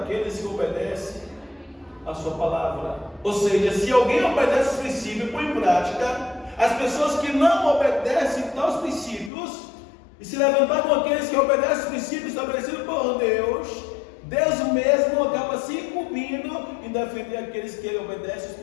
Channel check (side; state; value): right; drops out; at 9.3 s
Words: que obedecem a sua palavra. Ou seja, se alguém obedece os princípios e põe em prática, as pessoas que não obedecem aos princípios e se levantar com aqueles que obedecem os princípios estabelecidos por Deus, Deus mesmo acaba se incumbindo em defender aqueles que obedecem os